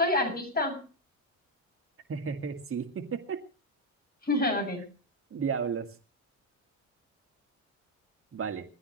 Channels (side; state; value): both; normal; correlation 0.02